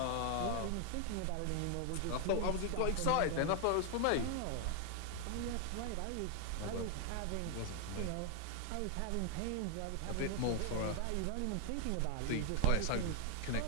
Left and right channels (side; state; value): both; different; correlation 0.00